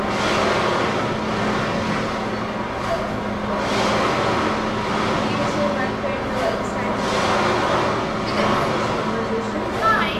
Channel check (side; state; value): both; identical; correlation 1.00